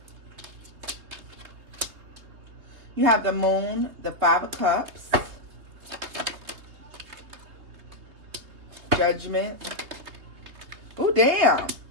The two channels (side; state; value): left; late; 3.4 ms